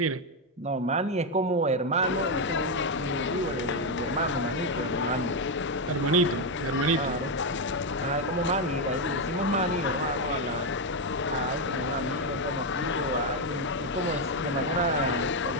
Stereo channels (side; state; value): both; normal; correlation 0.04